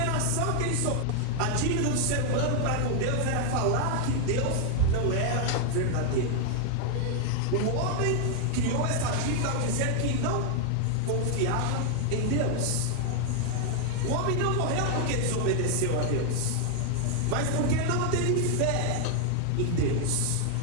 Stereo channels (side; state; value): both; different; correlation 0.00